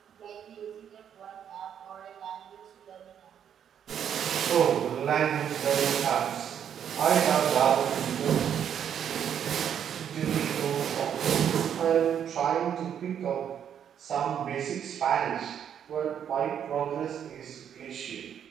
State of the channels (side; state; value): left; quieter; 8.8 dB